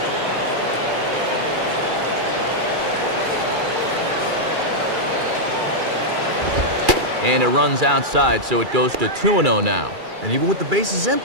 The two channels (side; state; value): left; late; 2.3 ms